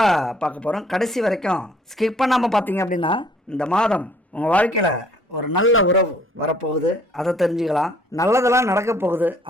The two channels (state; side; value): normal; both; correlation 0.59